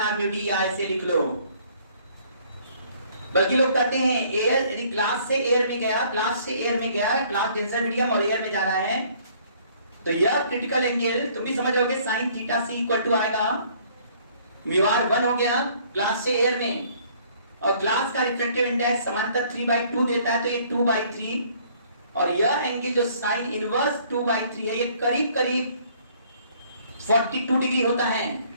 mu d, ऐसे लिख लो। बल्कि लोग कहते हैं एयर, यदि ग्लास से एयर में गया, ग्लास से एयर में गया, ग्लास डेंसर मीडियम और एयर में जा रहा है, तो यह क्रिटिकल एंगल तुम भी समझ रहोगे, sine theta C equal to आएगा म्यू आर 1 हो गया ग्लास से एयर में, और ग्लास का रिफ्रैक्टिव इंडेक्स समांतर 3/2 देता है, तो ये 2/3, और यह एंगल जो साइन इनवर्स 2/3 है, ये करीब करीब 42 डिग्री होता है।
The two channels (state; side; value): inverted; both; correlation -0.60